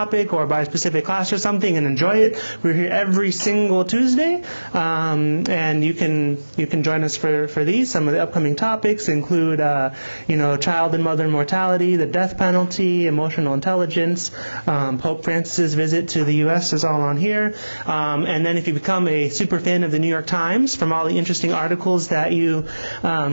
or by a specific class or something and enjoy it, we're here every single Tuesday, and you can join us for these. Some of the upcoming topics include child and mother mortality, the death penalty, emotional intelligence, Pope Francis's visit to the U.S. is all on here, and then if you become a super fan of the New York Times, from all the interesting articles that you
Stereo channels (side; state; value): both; inverted; correlation -1.00